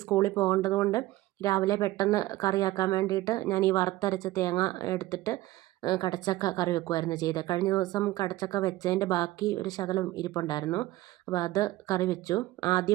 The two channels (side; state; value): left; quieter; 17.0 dB